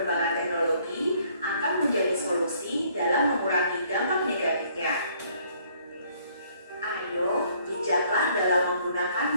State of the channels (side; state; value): both; inverted; correlation -0.63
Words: teknologi akan menjadi solusi dalam mengurangi dampak negatifnya. Ayo, bijaklah dalam menggunakan